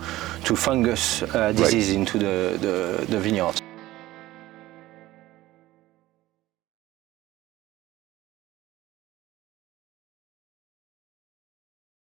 fungus disease into the vineyards.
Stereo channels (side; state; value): left; quieter; 16.7 dB